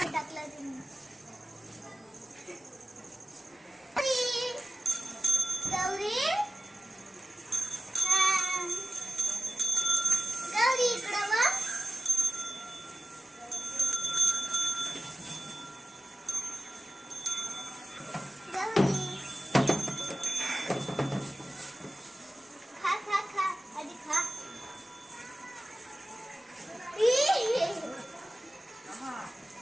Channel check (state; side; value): normal; both; correlation 0.96